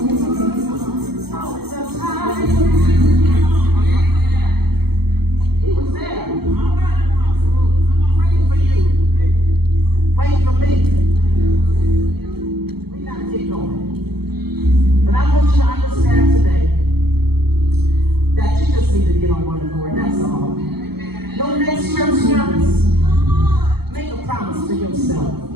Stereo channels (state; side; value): late; left; 0.96 ms